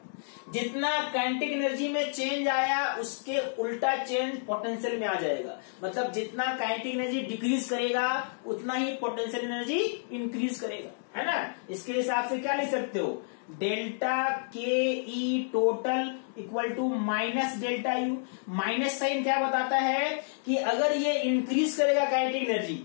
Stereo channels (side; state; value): right; silent; digital silence